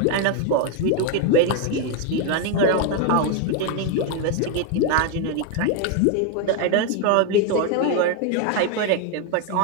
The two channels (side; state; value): both; different; correlation 0.01